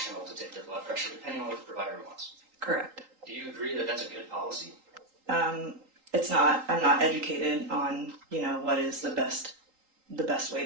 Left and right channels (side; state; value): left; late; 3.8 ms